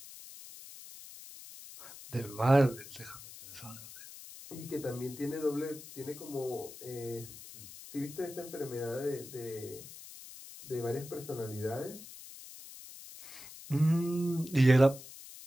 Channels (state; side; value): noise; left; hiss, 15 dB below the sound